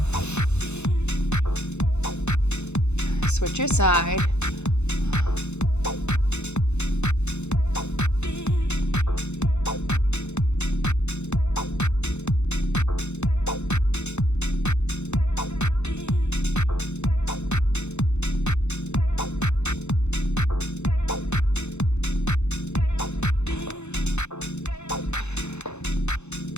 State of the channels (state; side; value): late; right; 0.82 ms